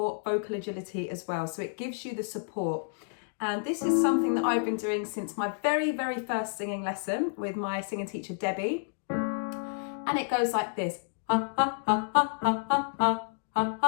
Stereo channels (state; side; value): silent; right; digital silence